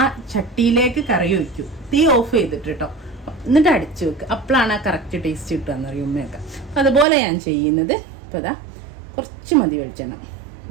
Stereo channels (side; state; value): left; drops out; at 7.1 s